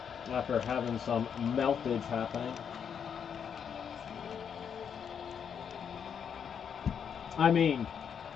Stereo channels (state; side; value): quieter; right; 7.5 dB